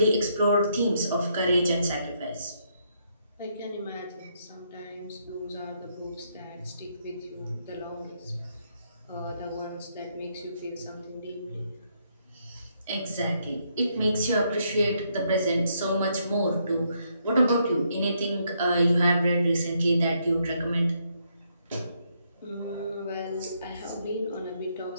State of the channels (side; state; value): both; inverted; correlation -0.75